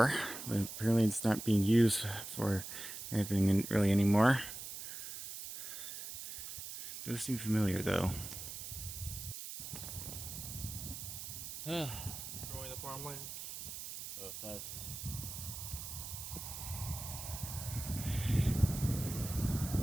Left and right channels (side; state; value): right; noise; hiss, 8 dB below the sound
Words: but apparently it's not being used for anything really anymore. It does seem familiar though. Growing the farmland. Both sides.